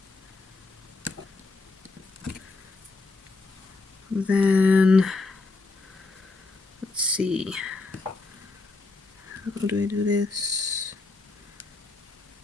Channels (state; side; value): quieter; right; 3.5 dB